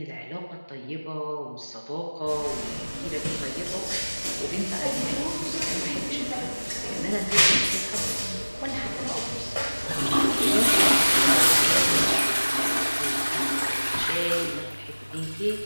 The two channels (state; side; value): inverted; both; correlation -1.00